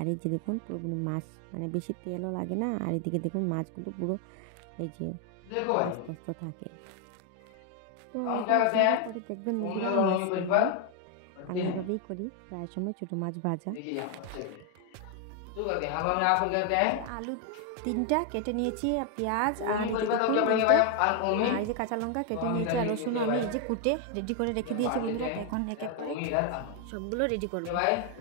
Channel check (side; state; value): both; different; correlation 0.01